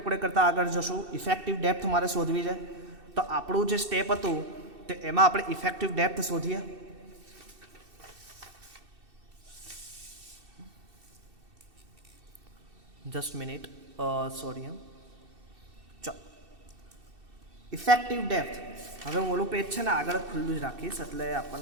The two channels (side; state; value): left; late; 2.7 ms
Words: કરતાં આગળ જશું. ઇફેક્ટિવ ડેપ્થ મારે શોધવી છે. તો આપણું જે સ્ટેપ હતું તે એમાં આપણે ઇફેક્ટિવ ડેપ્થ શોધીએ. Just minute, sorry. ચાલો, ઇફેક્ટિવ ડેપ્થ. હવે હું ઓલું પેજ છે ને આગળ ખુલ્લું જ રાખીશ એટલે